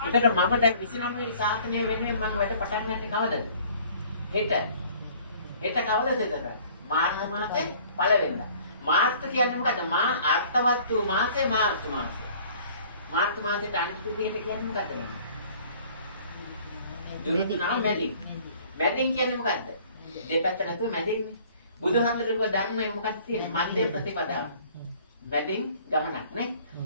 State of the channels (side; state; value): both; inverted; correlation -0.54